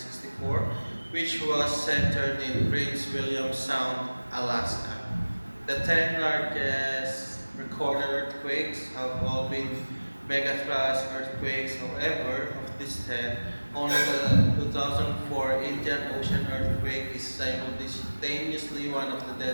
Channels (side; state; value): both; inverted; correlation -1.00